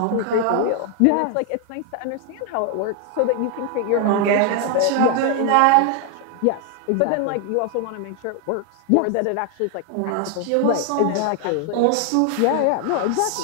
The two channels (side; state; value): both; different; correlation 0.00